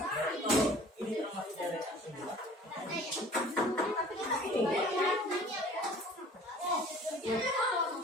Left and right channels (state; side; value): normal; both; correlation 0.48